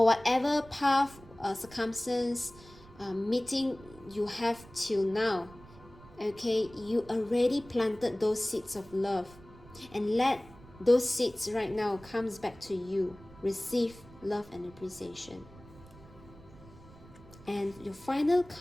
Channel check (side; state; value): right; noise; rumble, 21 dB below the sound